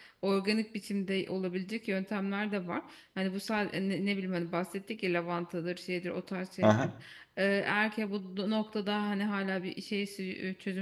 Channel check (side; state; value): both; identical; correlation 1.00